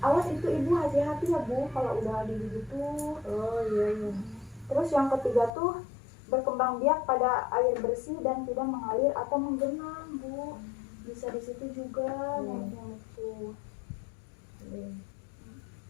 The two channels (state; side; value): drops out; right; at 5.5 s